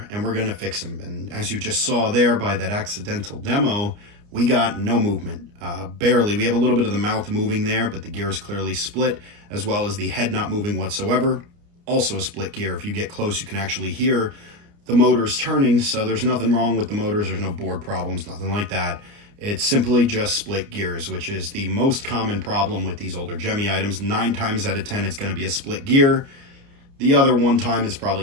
and we're going to fix him. And as you just saw there by that accidental demo, we got no movement, barely. We have a little bit of the mouth moving there, but the gear is clearly split, as well as the head not moving whatsoever. Also a split gear. If you get close, you can actually hear the motors turning, so there's nothing wrong with the motors. There's no board problems, nothing like that. It's simply just split gears, which is the most common problem with these older Gemmy items. 9 times out of 10, it's going to be a split gear. The other 1 time is probably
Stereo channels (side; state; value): left; late; 29 ms